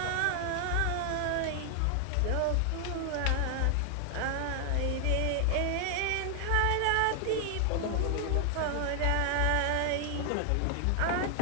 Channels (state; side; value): different; both; correlation 0.00